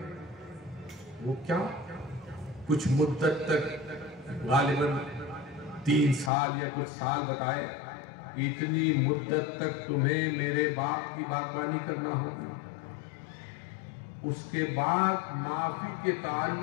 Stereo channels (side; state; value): right; drops out; at 6.3 s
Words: وہ کیا؟ کچھ مدت تک, غالباً 3 سال یا کچھ سال بتائے, اتنی مدت تک تمہیں میرے باپ کی باغبانی کرنا ہوگی. اس کے بعد معافی کے